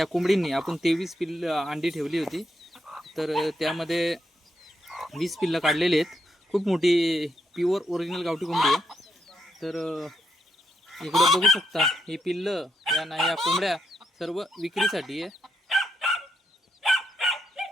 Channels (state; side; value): normal; both; correlation 0.79